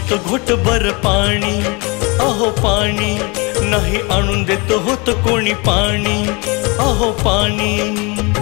घोटभर पाणी, अहो पाणी नाही आणून देत होतं कोणी पाणी, अहो पाणी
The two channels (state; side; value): quieter; right; 28.8 dB